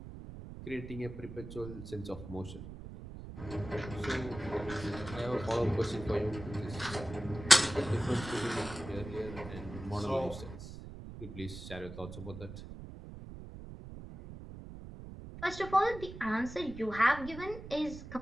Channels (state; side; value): noise; right; rumble, 11 dB below the sound